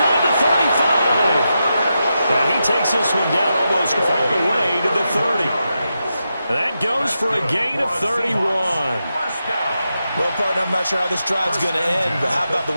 the 35. Now he takes this one down almost all the way to the 30. That goes for a gain of 31. Well, partner, I'm not sure how this drive's going to end, but how about the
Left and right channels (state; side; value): inverted; both; correlation -0.87